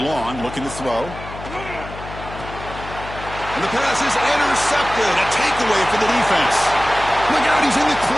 long, looking to throw. And the pass is intercepted. A takeaway for the defense. Look out, he's in the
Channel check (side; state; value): left; noise; hum, 12 dB below the sound